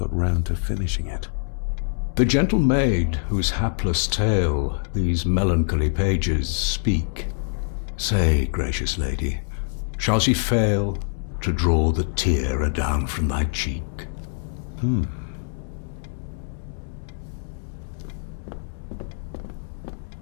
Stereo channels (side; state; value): right; silent; 62 dB below the other